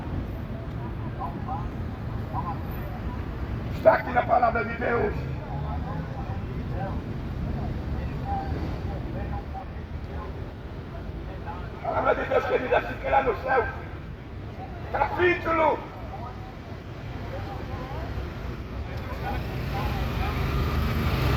Está aqui na palavra de Deus. A palavra de Deus, querida, assim que lá no céu, capítulo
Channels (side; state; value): both; identical; correlation 1.00